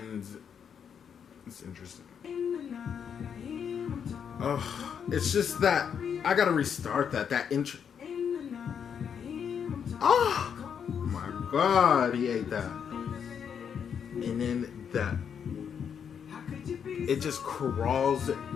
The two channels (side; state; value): right; quieter; 7.6 dB